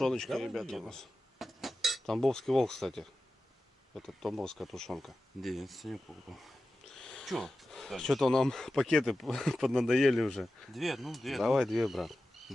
Давай ребята, у делаем. нас. Тамбовский волк, кстати. Это тамбовская тушенка. Да, я Санек покупал. Че? Что-то нам пакеты поднадоели уже. Две, ну две. Давай две, брат.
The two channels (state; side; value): normal; both; correlation 0.93